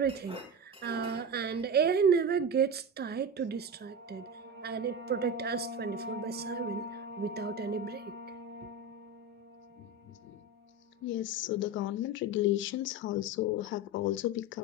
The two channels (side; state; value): both; normal; correlation 0.22